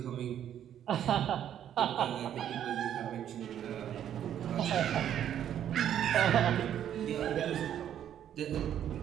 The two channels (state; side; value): quieter; left; 10.2 dB